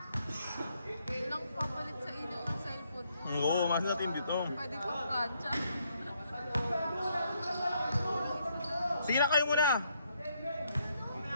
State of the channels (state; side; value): inverted; both; correlation -0.73